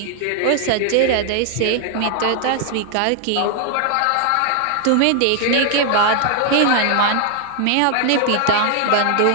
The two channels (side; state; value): both; different; correlation 0.00